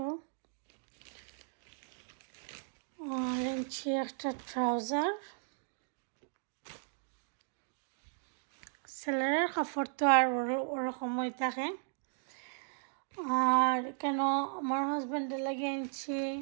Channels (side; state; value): left; silent; 54 dB below the other